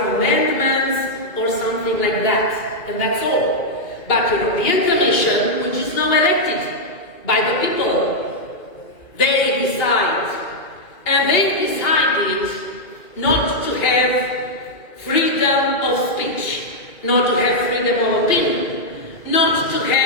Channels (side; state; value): right; late; 2.8 ms